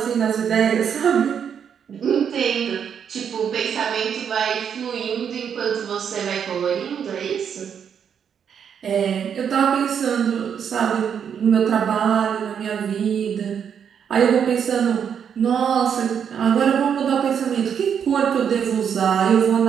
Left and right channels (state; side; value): quieter; left; 7.8 dB